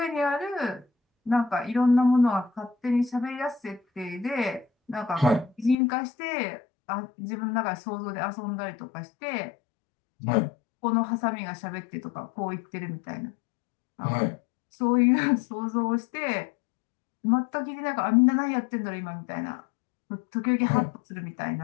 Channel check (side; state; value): right; drops out; at 5.8 s